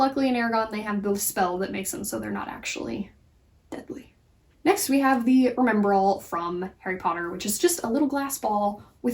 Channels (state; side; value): identical; both; correlation 1.00